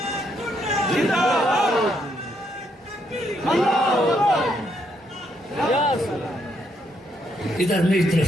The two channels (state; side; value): normal; both; correlation 0.75